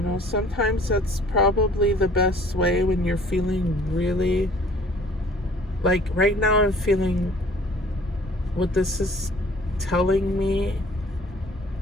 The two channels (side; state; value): both; normal; correlation 0.53